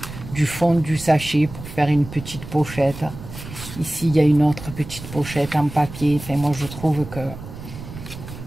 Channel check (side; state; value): right; noise; rumble, 13 dB below the sound